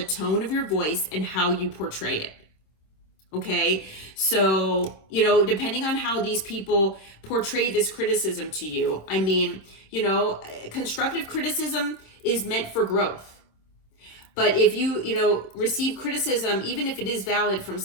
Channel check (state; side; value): late; right; 26 ms